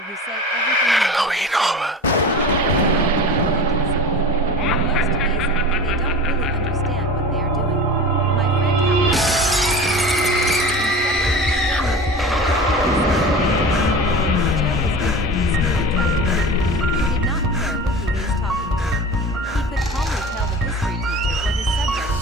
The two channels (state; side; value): normal; both; correlation 0.34